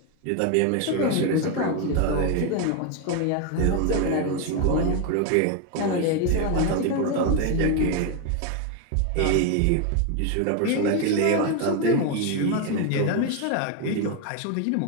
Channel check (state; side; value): different; both; correlation 0.01